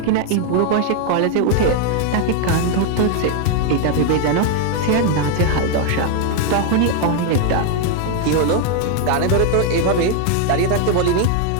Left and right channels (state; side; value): different; both; correlation 0.00